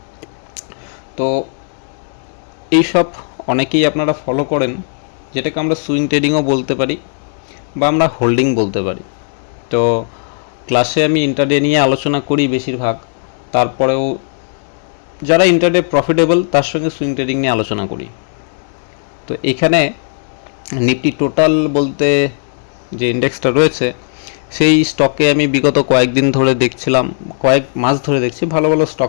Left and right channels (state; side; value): silent; right; digital silence